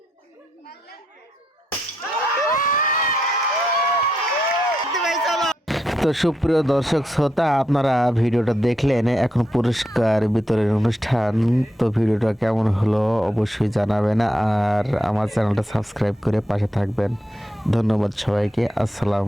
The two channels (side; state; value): both; normal; correlation 0.81